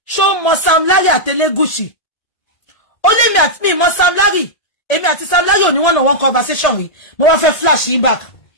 ṣó mọ Sam Larry àtẹlẹ́gùsì ó lé mi àti mi mọ Sam Larry èmi àti Sam Larry ò ní one-on-one conversation rí mo wá fẹ́ flash yín back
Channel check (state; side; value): late; right; 1.8 ms